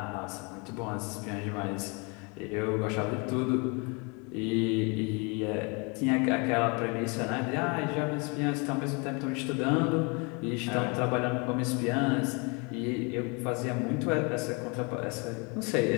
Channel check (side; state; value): right; quieter; 31.5 dB